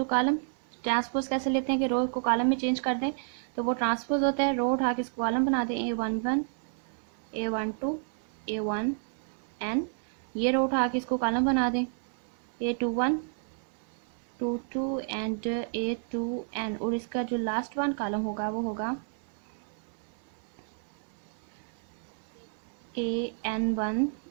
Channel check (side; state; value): left; silent; 57 dB below the other